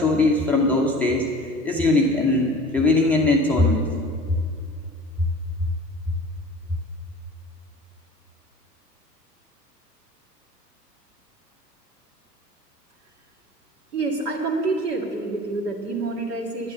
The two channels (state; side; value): normal; both; correlation 0.42